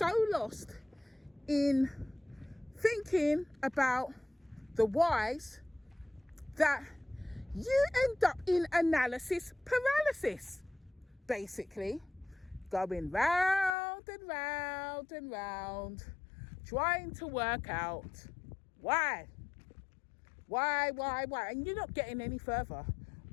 lost in thinking about the whys that you end up in analysis paralysis, basically going round and round and round, trying to work out why, and you're not getting any further.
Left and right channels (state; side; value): drops out; right; at 13.8 s